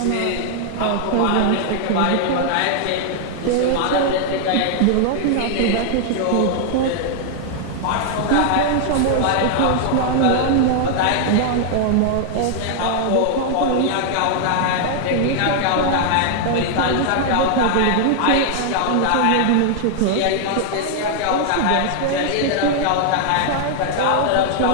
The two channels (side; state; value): both; different; correlation 0.00